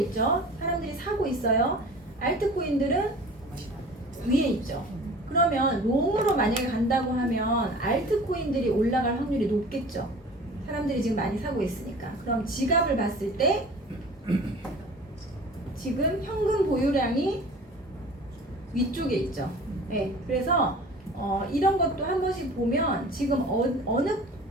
사람들이 사고 있어요. 알트코인들은 위에 있죠. 그러면 롱으로 만약에 간다고 하면 알트코인들이 올라갈 확률이 높겠죠. 사람들이 지금 많이 사고 있으니까. 그럼 지갑을 봤을 때 지금 현금 보유량이 위쪽에 있죠. 네, 그래서 이런 것도 한 번씩 보면 지금 어느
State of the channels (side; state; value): both; normal; correlation 0.43